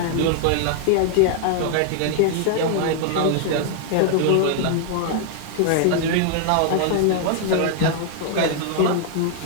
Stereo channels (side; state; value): both; different; correlation 0.00